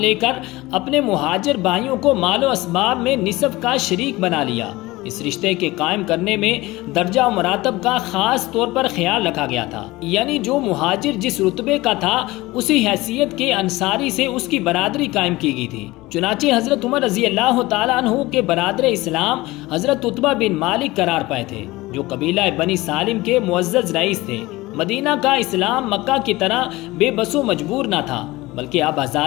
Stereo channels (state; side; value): quieter; right; 19.9 dB